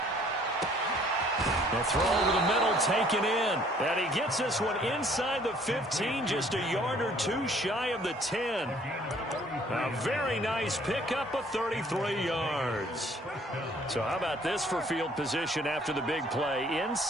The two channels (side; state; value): both; normal; correlation 0.59